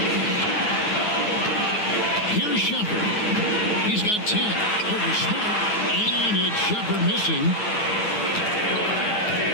Here's Shepherd. He's got 10. Over Smart. And it's Shepherd missing.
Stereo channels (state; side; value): late; right; 9.5 ms